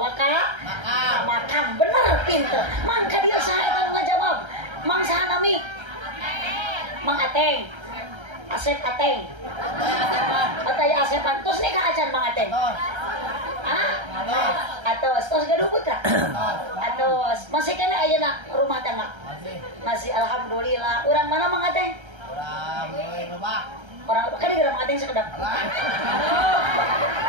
ka makam bener pinter mangka dia saha eta ngajawab mang saha nami Mang Ateng Asep Ateng Ataya Asepan tos nih ka acan Mang Ateng atos tos gaduh putra atos masih kena ayeuna rumah tangga masih alhamdulillah urang mana Mang Ateng urang lebak orang kan di Mang Ateng sekedap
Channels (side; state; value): left; late; 1.3 ms